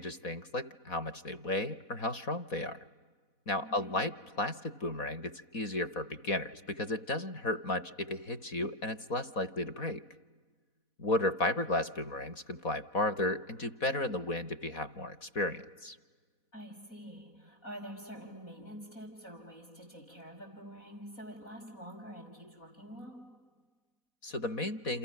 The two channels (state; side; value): late; right; 4.1 ms